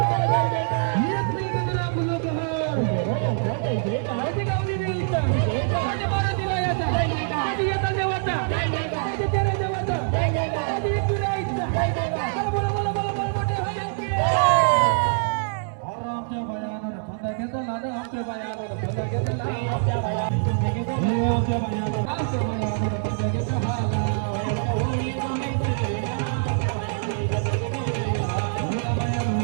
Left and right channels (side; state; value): left; silent; 62 dB below the other